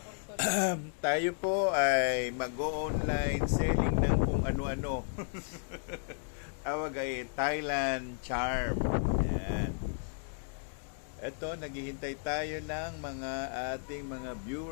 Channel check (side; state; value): right; silent; digital silence